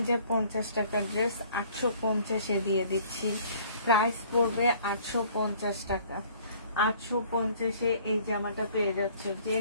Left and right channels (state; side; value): inverted; both; correlation -0.55